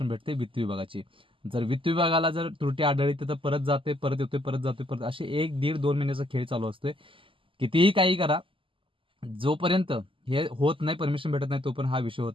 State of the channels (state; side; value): late; left; 0.25 ms